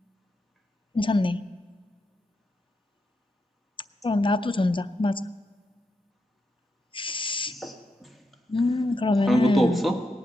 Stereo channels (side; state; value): both; normal; correlation 0.84